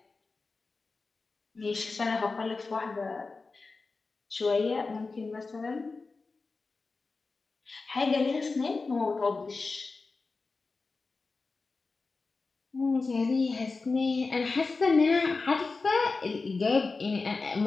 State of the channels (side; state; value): right; quieter; 4.0 dB